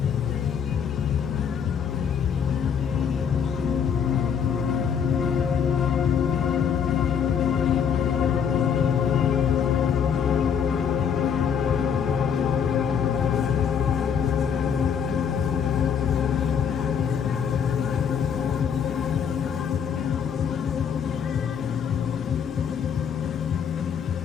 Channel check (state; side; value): quieter; right; 7.4 dB